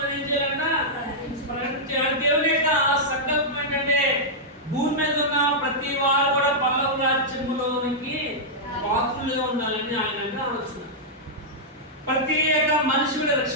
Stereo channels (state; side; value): normal; both; correlation -0.09